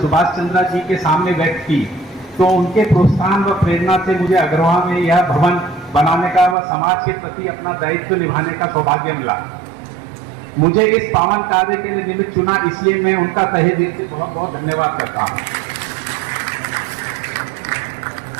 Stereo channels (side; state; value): left; drops out; at 6.6 s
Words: सुभाष चंद्र जी के सामने व्यक्त की, तो उनके प्रोत्साहन व प्रेरणा से मुझे अग्रवाल में यह भवन बनाने का व समाज के प्रति अपना दायित्व निभाने का सौभाग्य मिला। मुझे इस पावन कार्य के लिए निमित्त चुना, इसलिए मैं उनका तहे दिल से बहुत बहुत धन्यवाद करता हूँ।